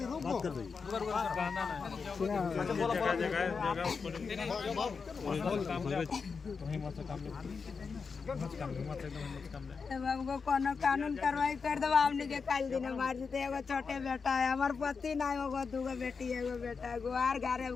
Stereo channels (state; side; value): quieter; right; 5.3 dB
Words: रुक बात कर दीजिए। बाबू कोनो कानून कार्रवाई कर दो, हमने के काल दिन मार देते। एगो छोटे बेटा है, हमार पति ना होगो, दूगो बेटी एगो बेटा गो, आर घरे